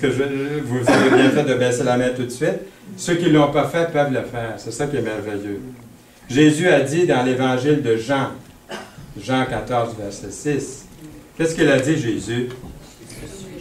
vous avez bien fait de baisser la main tout de suite. Ceux qui ne l'ont pas fait peuvent le faire. C'est ça qui est merveilleux. Jésus a dit dans l'évangile de Jean, Jean 14, verset 6, qu'est-ce qu'il a dit, Jésus?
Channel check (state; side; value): identical; both; correlation 1.00